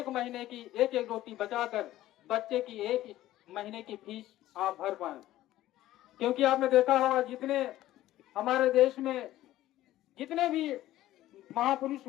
महीने की एक एक रोटी बचाकर बच्चे की एक महीने की फीस आप भर पाए। क्योंकि आपने देखा होगा जितने हमारे देश में जितने भी महापुरुष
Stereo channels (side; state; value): right; quieter; 14.7 dB